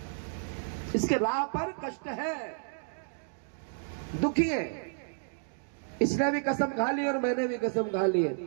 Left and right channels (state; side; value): silent; left; digital silence